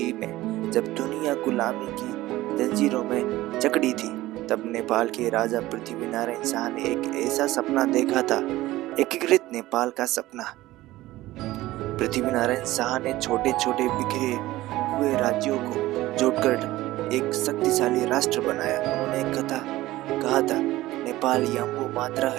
में जब दुनिया गुलामी की जंजीरों में जकड़ी थी, तब नेपाल के राजा पृथ्वीनारायण शाह ने एक ऐसा सपना देखा था, एकीकृत नेपाल का सपना। पृथ्वीनारायण शाह ने छोटे छोटे बिखरे हुए राज्यों को जोड़कर एक शक्तिशाली राष्ट्र बनाया। उन्होंने कहा था, नेपाल यम्बो मात्रा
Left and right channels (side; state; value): left; quieter; 17.0 dB